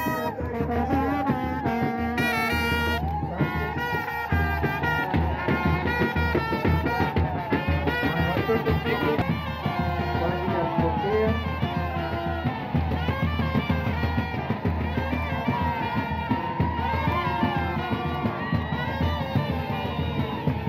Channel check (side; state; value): both; identical; correlation 1.00